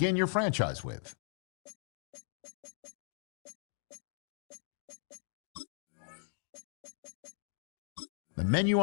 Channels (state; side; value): silent; right; digital silence